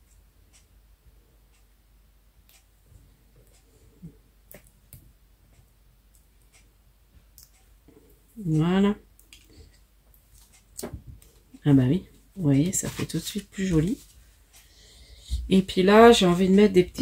Voilà. Ah bah oui, vous voyez, ça fait tout de suite plus joli. Et puis là, j'ai envie de mettre des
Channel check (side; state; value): both; identical; correlation 1.00